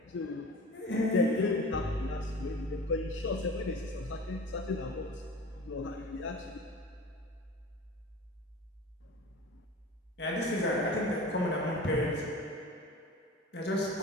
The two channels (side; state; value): both; normal; correlation 0.38